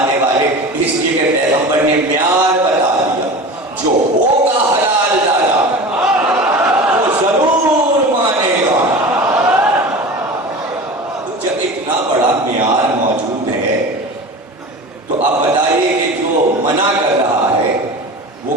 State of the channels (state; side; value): normal; both; correlation 0.33